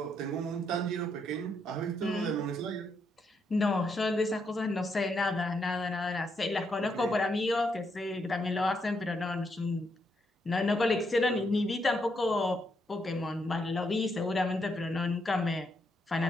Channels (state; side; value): normal; both; correlation 0.78